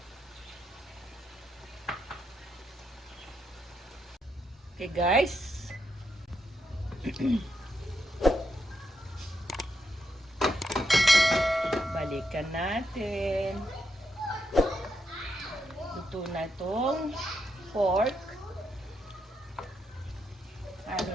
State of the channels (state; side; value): normal; both; correlation 0.81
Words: Okay guys. Balikan natin. Luto na itong pork. Ano